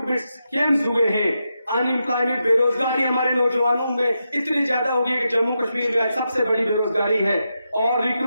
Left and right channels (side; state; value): both; inverted; correlation -0.86